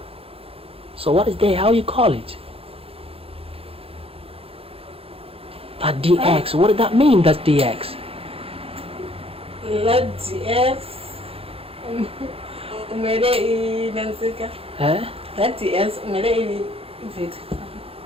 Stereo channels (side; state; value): left; late; 0.28 ms